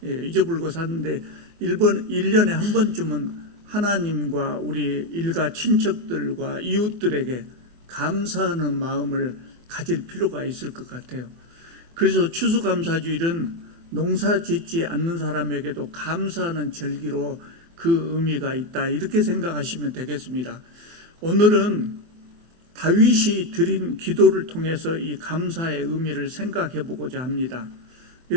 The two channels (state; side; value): late; left; 24 ms